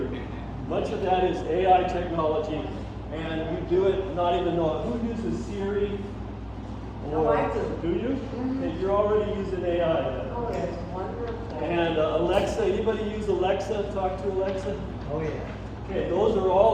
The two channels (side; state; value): both; identical; correlation 1.00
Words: much of that is AI technology, and you do it not even know it. Who uses Siri? Or I do. Do you? Mm-hmm. Okay, you're already using AI. Oh, it's wonderful. And Alexa, anybody use Alexa? Talk to Alexa? Oh, yeah. Okay, those are